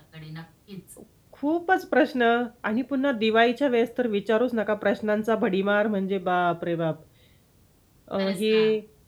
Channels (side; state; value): both; identical; correlation 1.00